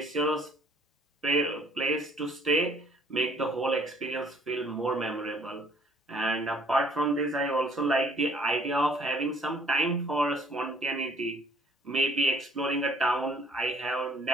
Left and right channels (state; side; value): normal; both; correlation 0.59